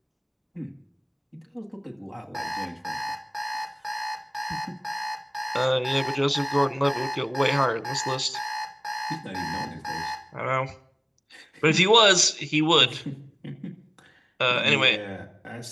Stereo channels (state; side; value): identical; both; correlation 1.00